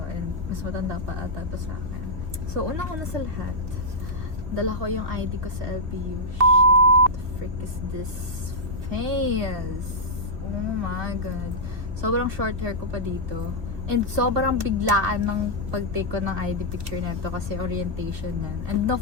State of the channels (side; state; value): left; late; 2.5 ms